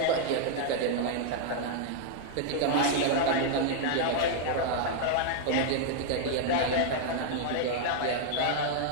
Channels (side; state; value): both; different; correlation 0.00